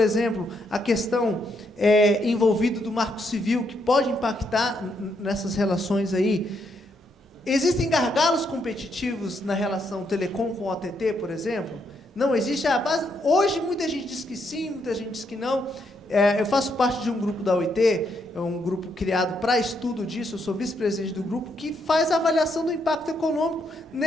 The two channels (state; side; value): normal; both; correlation 0.76